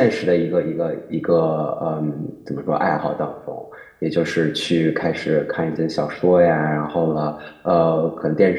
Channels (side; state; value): both; identical; correlation 1.00